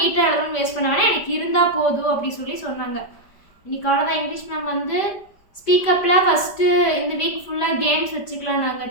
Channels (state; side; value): late; right; 5.0 ms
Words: எழுதணும்னு வேஸ்ட் பண்ண வேணாம், எனக்கு இருந்தால் போதும் அப்படி சொன்னாங்க. இன்னைக்கு அவ்வளோதான். இங்கிலீஷ் மேம் வந்து ஸ்பீக்கப்பில் ஃபஸ்ட்டு இந்த வீக் ஃபுல்லாக கேம்ஸ் வச்சுக்கலாம்,